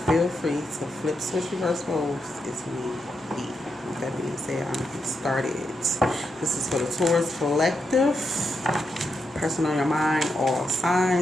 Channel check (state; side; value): normal; both; correlation 0.83